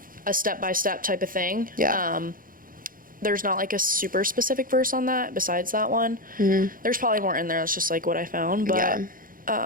a step-by-step type of thing. There's not like a super specific verse on that besides that one. There's probably more in there. That's just like what I found. But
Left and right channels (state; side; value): late; left; 0.41 ms